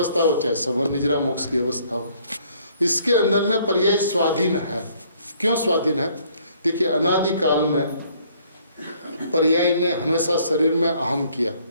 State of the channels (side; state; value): both; inverted; correlation -0.62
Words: हो, चाहे सवन निजरा मोक्ष की अवस्था हो। इसके अंदर में पर्याय स्वाधीन है। क्यों स्वाधीन है? देखिए, अनादिकाल में पर्याय ने हमेशा शरीर में अहम किया,